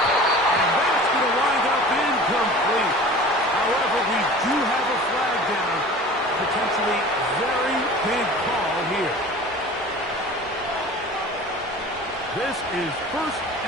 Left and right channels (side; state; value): both; normal; correlation 0.41